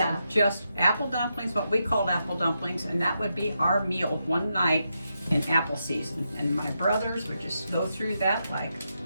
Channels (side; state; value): both; inverted; correlation -0.84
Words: of just apple dumplings, what we called apple dumplings, and that would be our meal one night in apple season. And my brothers would just go through that like